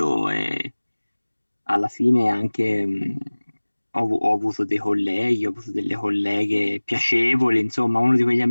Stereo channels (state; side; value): inverted; both; correlation -1.00